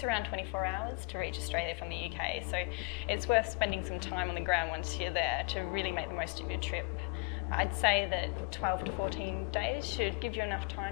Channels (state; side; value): quieter; right; 30.9 dB